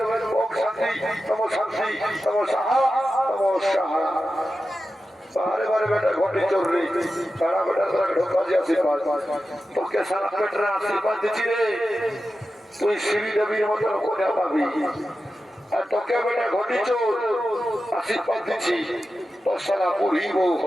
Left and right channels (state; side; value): normal; both; correlation 0.92